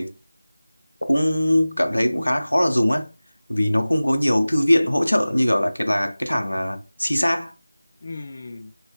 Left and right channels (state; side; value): inverted; both; correlation -0.98